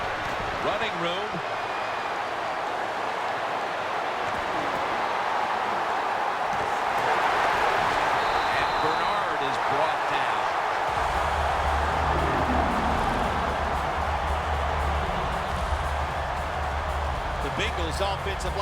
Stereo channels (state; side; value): identical; both; correlation 1.00